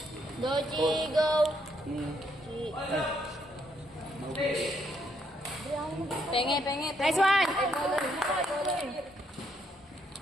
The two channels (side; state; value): both; normal; correlation 0.73